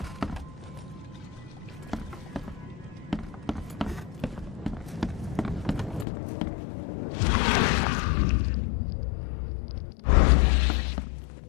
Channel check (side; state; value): right; drops out; at 6.1 s